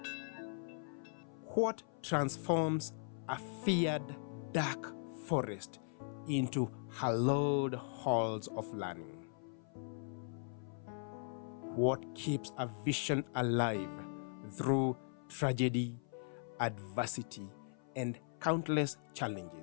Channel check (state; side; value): silent; right; 52 dB below the other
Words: What transforms a feared dark forest into hallowed halls of learning? What keeps a vision alive through tragedy, adversity, and countless